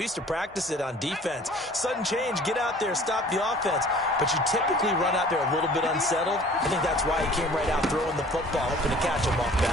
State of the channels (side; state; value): both; normal; correlation 0.49